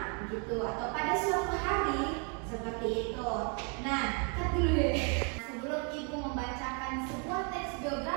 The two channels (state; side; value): quieter; left; 37.0 dB